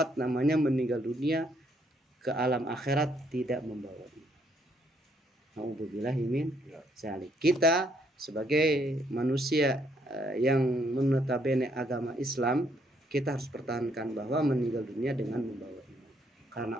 namanya meninggal dunia ke alam akhirat tidak membawa iman. Nauzubillahi min dzalik. Kita sebagai manusia yang menotabene agama Islam, kita harus pertahankan bahwa meninggal dunia dengan membawa iman. Karena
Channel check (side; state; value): both; normal; correlation 0.70